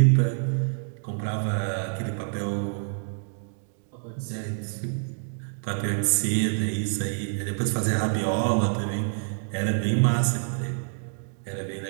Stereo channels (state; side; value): silent; left; digital silence